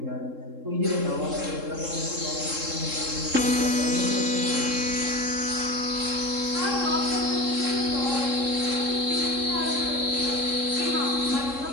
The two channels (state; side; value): late; left; 3.7 ms